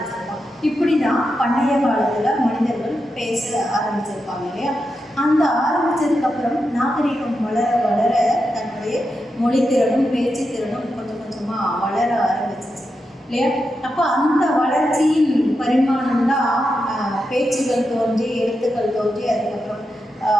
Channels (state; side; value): normal; both; correlation 0.87